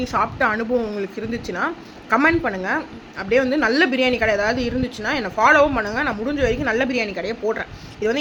சாப்பிட்ட அனுபவம் உங்களுக்கு இருந்துச்சுன்னா கமெண்ட் பண்ணுங்கள். அப்படியே வந்து நல்ல பிரியாணி கடை ஏதாவது இருந்துச்சுன்னா என்னை ஃபாலோவும் பண்ணுங்கள். நான் முடிஞ்ச வரைக்கும் நல்ல பிரியாணி கடையை போடுறேன். இது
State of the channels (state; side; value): identical; both; correlation 1.00